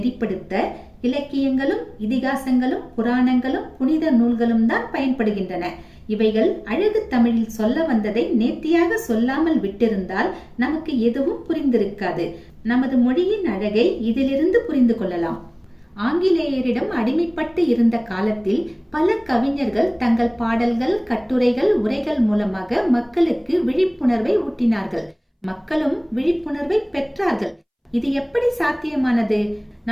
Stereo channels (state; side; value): identical; both; correlation 1.00